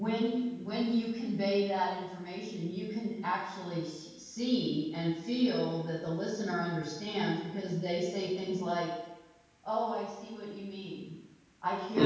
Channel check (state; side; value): identical; both; correlation 1.00